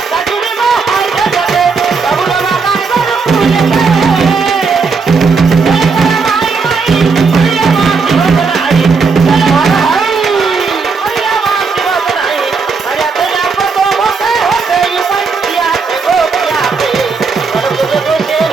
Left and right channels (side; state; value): left; quieter; 4.8 dB